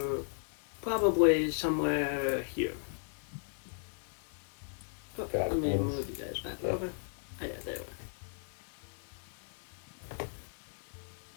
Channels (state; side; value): silent; right; digital silence